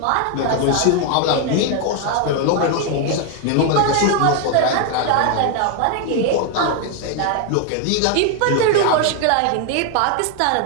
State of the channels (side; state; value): both; different; correlation 0.01